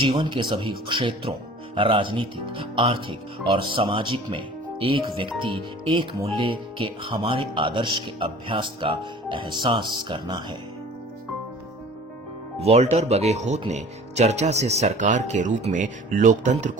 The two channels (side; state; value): both; normal; correlation 0.46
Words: के सभी क्षेत्रों, राजनीतिक, आर्थिक और सामाजिक में एक व्यक्ति एक मूल्य के हमारे आदर्श के अभ्यास का एहसास करना है। वॉल्टर बगेहोत ने चर्चा से सरकार के रूप में लोकतंत्र